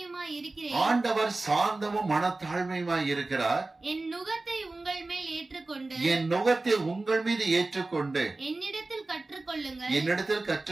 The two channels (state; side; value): quieter; left; 3.2 dB